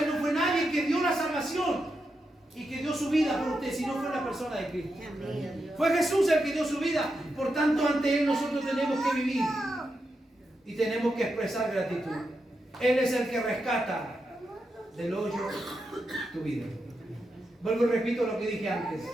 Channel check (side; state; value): both; normal; correlation 0.86